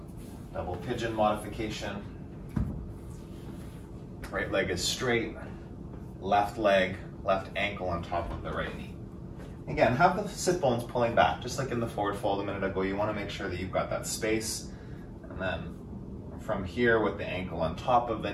double pigeon modification. Right leg is straight, left leg, left ankle on top of the right knee. Again, have the sit bones pulling back, just like in the forward fold a minute ago. You want to make sure that you've got that space, and then in from here with the ankle on top of the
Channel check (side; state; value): both; identical; correlation 1.00